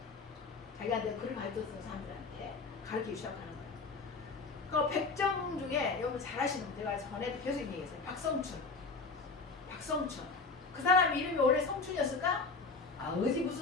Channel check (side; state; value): right; quieter; 4.3 dB